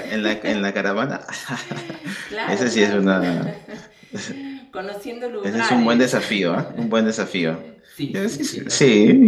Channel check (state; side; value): identical; both; correlation 1.00